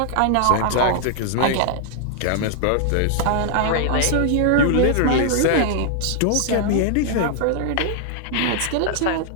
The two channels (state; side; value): different; both; correlation 0.00